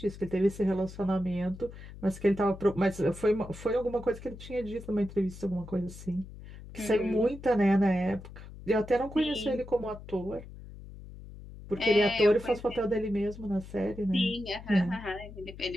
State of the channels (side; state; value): left; noise; hum, 15 dB below the sound